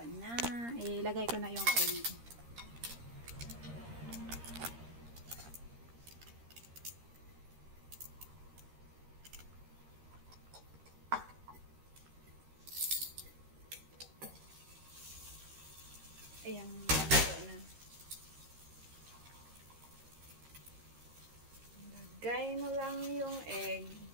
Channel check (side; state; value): left; late; 13 ms